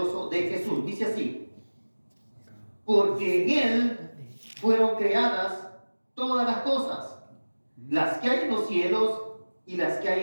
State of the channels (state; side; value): inverted; both; correlation -1.00